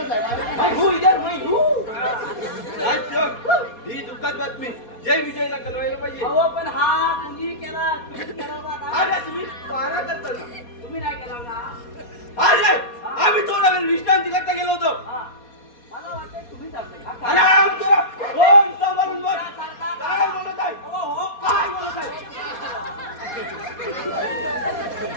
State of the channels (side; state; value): right; late; 4.2 ms